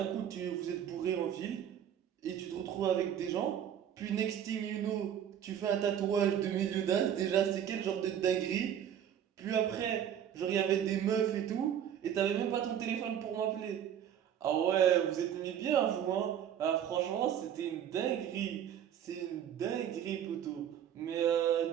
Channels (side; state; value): left; quieter; 9.6 dB